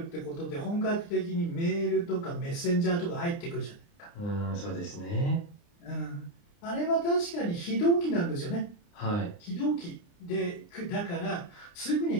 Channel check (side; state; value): right; late; 29 ms